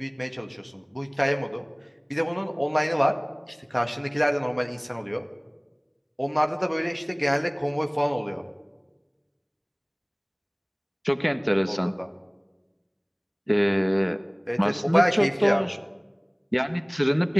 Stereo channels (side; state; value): both; identical; correlation 1.00